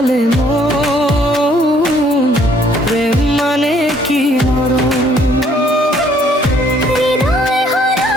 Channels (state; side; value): normal; both; correlation 0.63